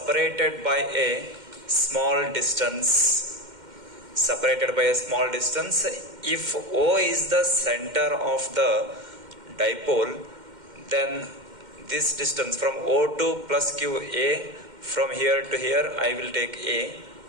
by a small distance. If O is the center of the dipole, then this distance from O2 plus Q A, from here to here I will take A.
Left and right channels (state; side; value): late; left; 2.1 ms